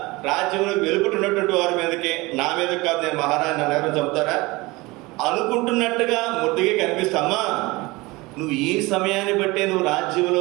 రాజ్యంలో వెలుపుతున్నటువంటి వారి మీదకి, నా మీద కాదు, నేను మహారాజు నన్ను ఎవరు చంపుతారా అనుకుంటున్నట్టుగా ముద్దుగా కనిపిస్తామా. నువ్వు ఈ సమయాన్ని బట్టే నువ్వు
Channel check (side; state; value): left; quieter; 22.5 dB